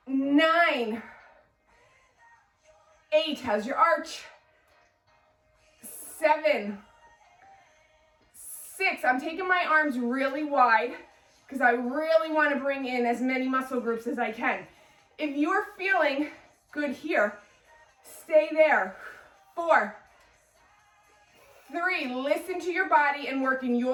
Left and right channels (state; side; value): identical; both; correlation 1.00